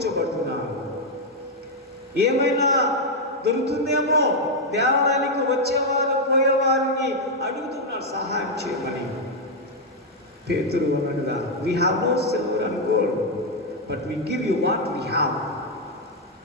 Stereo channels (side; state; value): both; normal; correlation 0.00